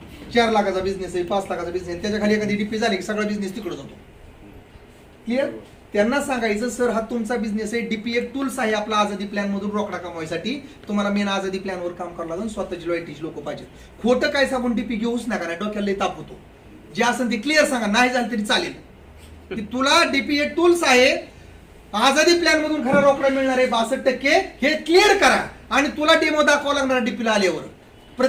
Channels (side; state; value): both; identical; correlation 1.00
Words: 4 लाखाचा बिझनेस आहे, 5 लाखाचा बिझनेस, त्याच्या खाली एखादी डीपी झाली की सगळा बिझनेस तिकडे जातो. क्लिअर? त्यांना सांगायचं सर हा तुमचा बिझनेस आहे, डीपी एक टूल्स आहे आपला आझादी प्लॅन मधून रोकडा कमवायसाठी. तुम्हाला मेन आझादी प्लॅनवर काम करावं लागेल, स्वतःची लॉयल्टीची लोक पाहिजे. खोटं काय सांगून डीपी घेऊच नका, नाही डोक्याला ताप होतो. जे असेल ते क्लिअर सांगा, नाही झालं तरी चालेल की तुला डीपी एक टूल्स आहे, आझादी प्लॅन मधून खरा रोकडा मिळणार आहे 62%, हे क्लिअर करा. आणि तुला डेमो दाखवा लागणार डीपीला आल्यावर.